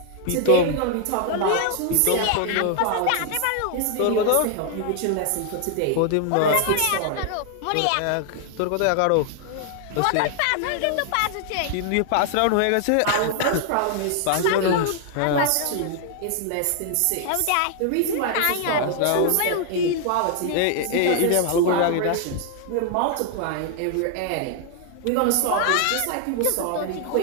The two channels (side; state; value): both; different; correlation 0.00